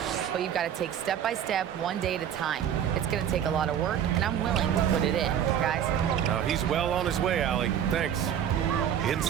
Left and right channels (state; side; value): quieter; left; 9.5 dB